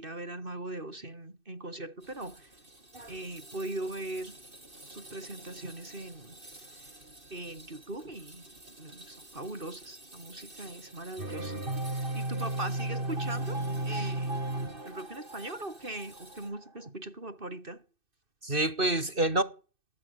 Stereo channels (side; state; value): left; late; 2.6 ms